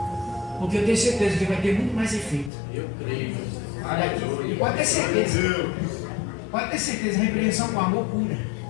Porque eu tenho certeza que vai ter muito mais efeito. Eu creio. E pode ter certeza. Pode ter certeza, a repreensão com amor cura.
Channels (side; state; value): right; drops out; at 2.5 s